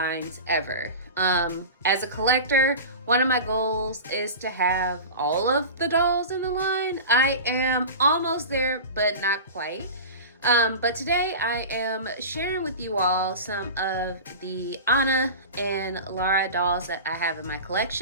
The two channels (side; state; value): both; inverted; correlation -0.30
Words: ever. As a collector, one of my goals is to have all of the dolls in the line. I am almost there, but not quite. But today I am sharing with you all some of the Anna and Lara dolls that I have in my